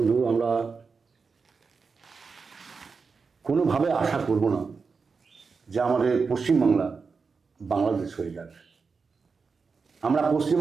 আমরা কোনোভাবে আশা করব না যে আমাদের পশ্চিমবাংলা বাংলাদেশ হয়ে যাবে। আমরা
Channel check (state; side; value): quieter; left; 4.9 dB